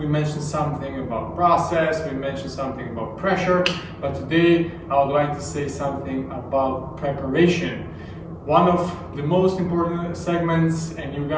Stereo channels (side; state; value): both; identical; correlation 1.00